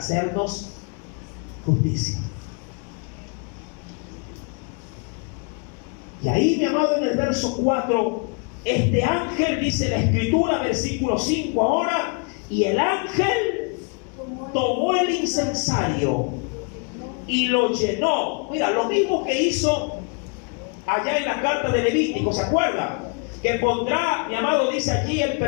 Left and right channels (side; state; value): right; quieter; 37.2 dB